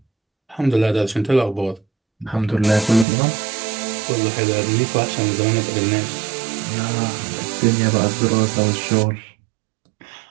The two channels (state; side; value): drops out; left; at 3.1 s